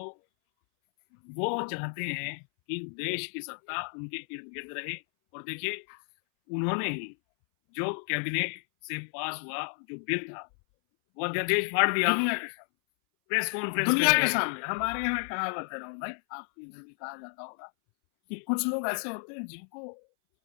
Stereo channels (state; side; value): silent; right; 57 dB below the other